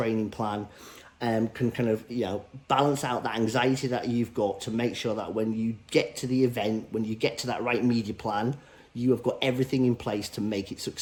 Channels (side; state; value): both; identical; correlation 1.00